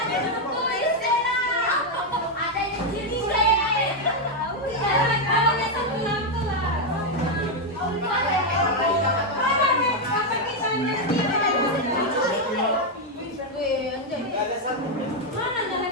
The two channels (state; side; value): normal; both; correlation 0.02